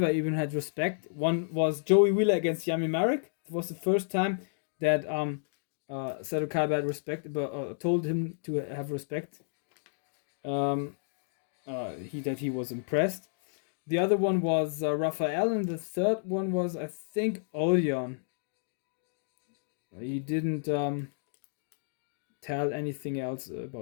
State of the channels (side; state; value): right; silent; digital silence